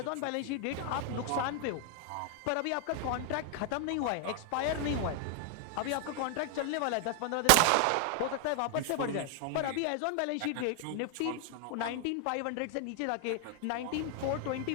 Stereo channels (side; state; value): both; different; correlation 0.00